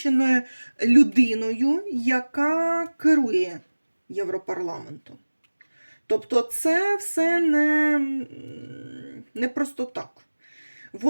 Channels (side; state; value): both; inverted; correlation -1.00